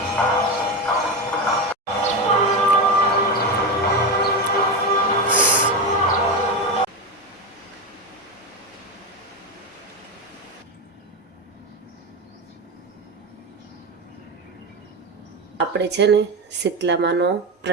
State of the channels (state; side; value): normal; both; correlation 0.15